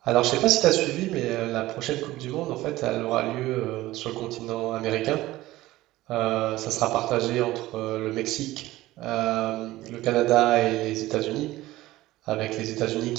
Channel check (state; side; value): quieter; left; 17.1 dB